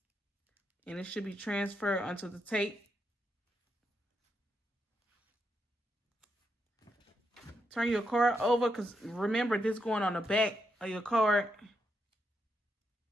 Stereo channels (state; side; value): normal; both; correlation 0.81